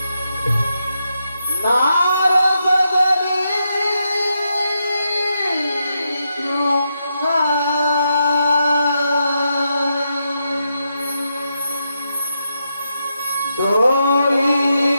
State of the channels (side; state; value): both; inverted; correlation -0.84